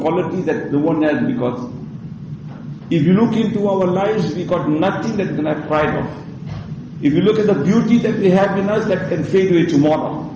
quality that the one has, because if you look into our lives, we got nothing that we can have pride of. If you look at the beauty that we have in us, that can fade away tomorrow.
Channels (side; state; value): both; identical; correlation 1.00